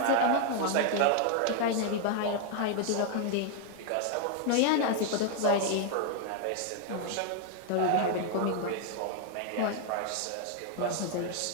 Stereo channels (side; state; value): both; different; correlation 0.00